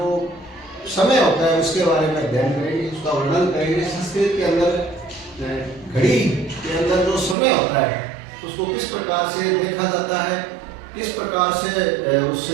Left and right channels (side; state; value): left; drops out; at 7.4 s